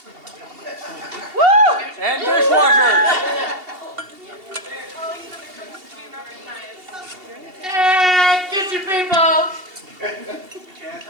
Woo! And dishwashers! Hey, kitchen people! Can't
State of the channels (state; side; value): late; left; 2.7 ms